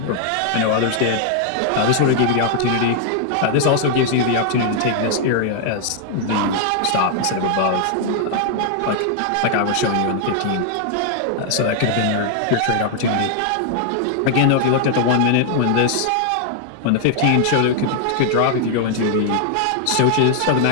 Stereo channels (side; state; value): both; different; correlation 0.00